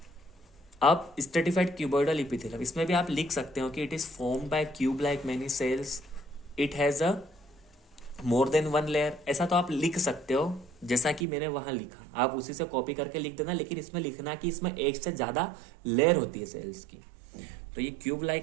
अब स्ट्रेटिफाइड क्यूबॉइडल इपिथेलियम, इसमें भी आप लिख सकते हो कि it is formed by cube like many cells, it has a more than one layer, ऐसा तो आप लिख सकते हो जैसा कि मैंने वहां लिखा, आप उसी से कॉपी करके लिख देना, लेकिन इसमें लिखना कि इसमें एक से ज्यादा लेयर होती है सेल्स की। तो ये क्यूब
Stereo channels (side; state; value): left; drops out; at 11.2 s